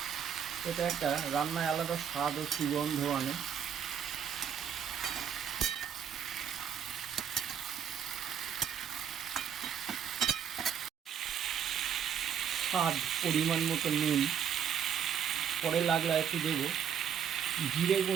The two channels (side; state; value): left; quieter; 8.4 dB